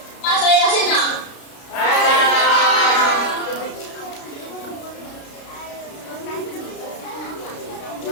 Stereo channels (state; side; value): late; right; 33 ms